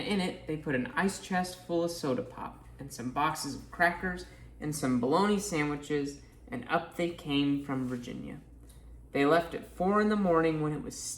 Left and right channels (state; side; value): identical; both; correlation 1.00